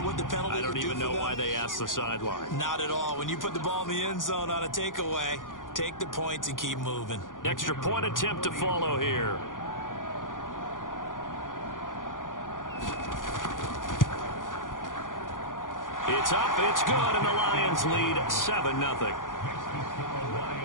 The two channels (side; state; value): right; late; 0.89 ms